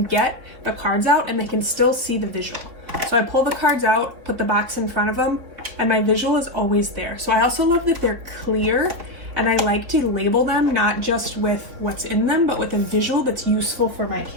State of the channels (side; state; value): left; late; 4.2 ms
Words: get the cards out and they can still see the visual. So I pull the cards out, put the box in front of them, and my visual is always there. So I also love that they're clear, and I like to label them not just with what's in them, but with a visual that's useful for my